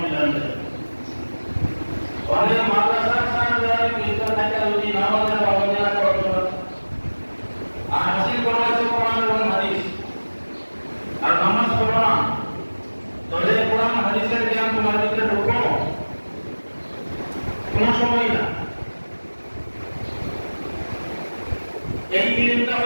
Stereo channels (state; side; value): inverted; both; correlation -1.00